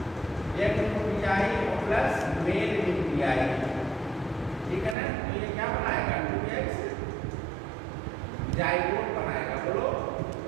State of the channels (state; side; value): drops out; left; at 5.0 s